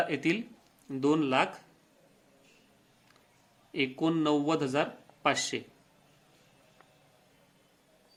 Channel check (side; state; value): both; identical; correlation 1.00